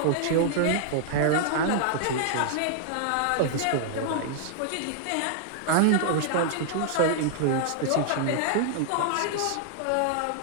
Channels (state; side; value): different; both; correlation -0.01